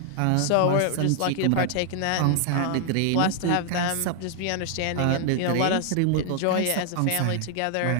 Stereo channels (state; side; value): different; both; correlation 0.00